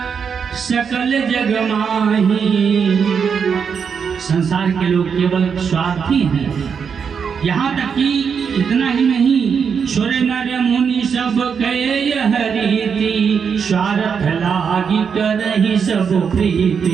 सकल जग माही। संसार के लोग केवल स्वार्थी हैं। यहाँ तक कि इतना ही नहीं, सुर नर मुनि सब कहे यह रीति, स्वार्थ लागी करहि सब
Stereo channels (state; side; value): quieter; left; 6.5 dB